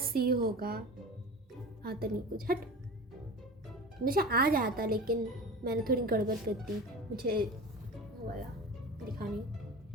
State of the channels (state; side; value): normal; both; correlation 0.33